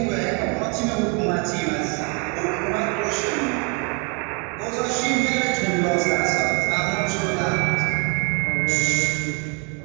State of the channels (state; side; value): quieter; left; 32.5 dB